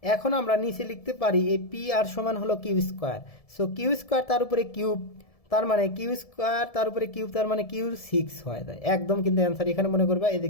এখন আমরা নিচে লিখতে পারি এই পি আর সমান হলো Q square, so Q square তার উপরে কিউব, তার মানে কিউ স্কোয়ার তার উপরে কিউব, তার মানে কিউ সিক্স হয়ে যায় একদম, কিন্তু অ্যান্সার এখানে মনে করবা এই যে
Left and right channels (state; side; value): late; right; 1.7 ms